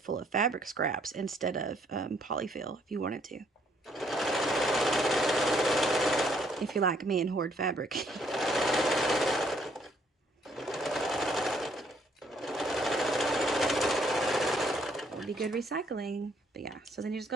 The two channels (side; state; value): both; normal; correlation 0.67